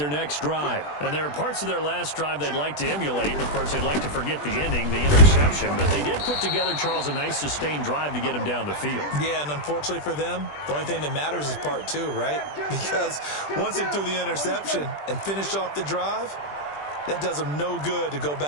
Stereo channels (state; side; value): late; right; 20 ms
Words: next drive. And there are parts of their last drive they'd like to emulate. Of course, they'd like to forget the ending, the interception. But they did put together, Charles, a nice sustained drive to get him down the field. Yeah, and unfortunately for them, the only thing that matters is part two, right? Because once they threw the interception and finished off the drive, that does them no good to go